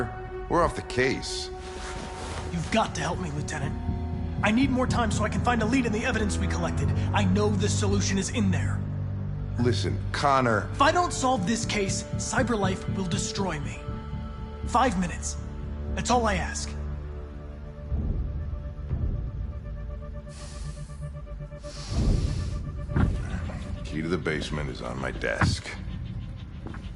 We're off the case. You've got to help me, Lieutenant. I need more time so I can find a lead in the evidence we collected. I know the solution is in there. Listen, Connor... If I don't solve this case, CyberLife will destroy me. 5 minutes. That's all I ask. Key to the basement is on my desk.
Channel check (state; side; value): identical; both; correlation 1.00